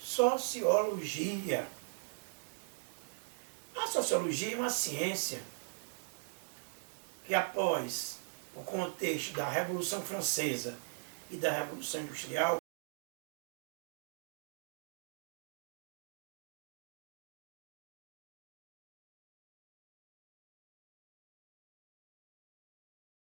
A sociologia é uma ciência que, após o contexto da Revolução Francesa e da Revolução Industrial,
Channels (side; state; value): left; silent; digital silence